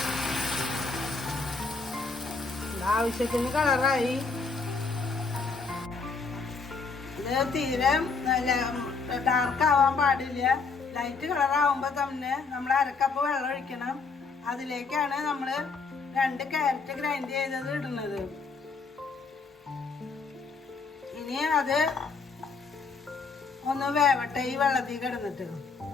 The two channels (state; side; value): quieter; right; 4.6 dB